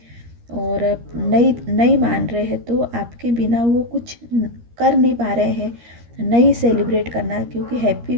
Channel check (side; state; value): left; late; 13 ms